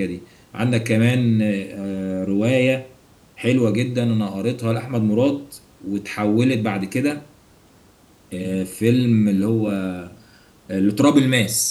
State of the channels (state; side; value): identical; both; correlation 1.00